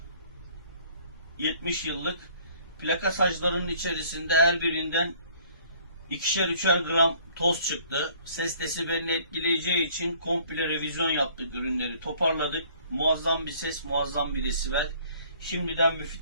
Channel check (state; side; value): inverted; both; correlation -0.57